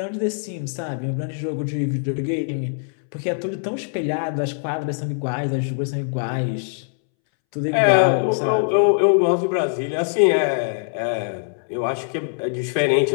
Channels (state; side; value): silent; right; 64 dB below the other